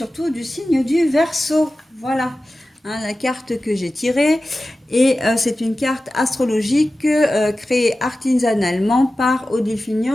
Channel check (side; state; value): both; normal; correlation 0.95